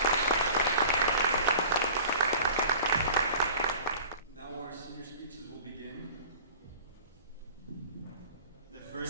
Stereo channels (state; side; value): inverted; both; correlation -0.43